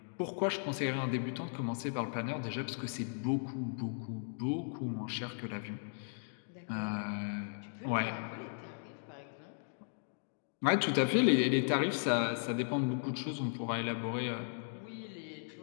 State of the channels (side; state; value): right; silent; digital silence